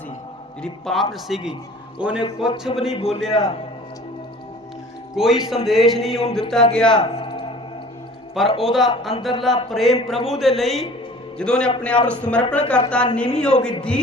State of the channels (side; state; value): both; normal; correlation 0.46